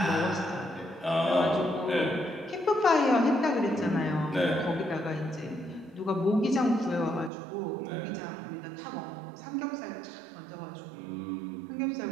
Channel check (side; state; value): left; drops out; at 7.3 s